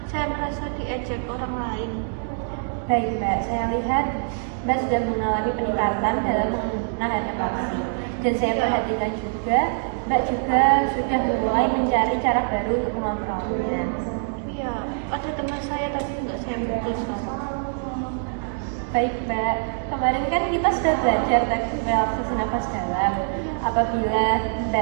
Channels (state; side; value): silent; left; digital silence